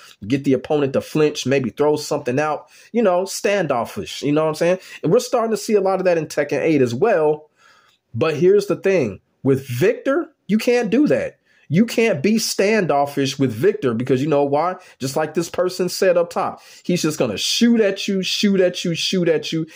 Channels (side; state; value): both; identical; correlation 1.00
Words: get the opponent to flinch, maybe throw something out, standoffish. You know what I'm saying? And we're starting to see a lot of that in Tekken 8 as well. But here's the thing. With Victor, you can't do that. You can't be standoffish with Victor because you know why? Just like this person said up top, he's just going to shoot at you, shoot at you, shoot at you.